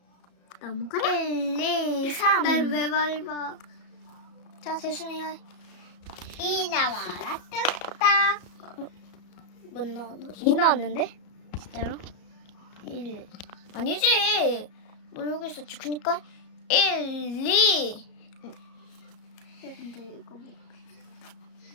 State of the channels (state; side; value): late; right; 34 ms